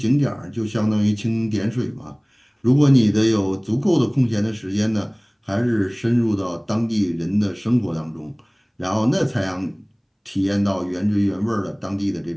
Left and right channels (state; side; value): identical; both; correlation 1.00